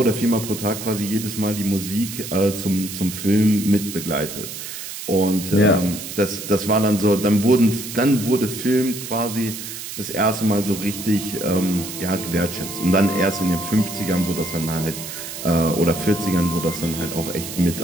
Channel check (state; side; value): noise; right; hiss, 9 dB below the sound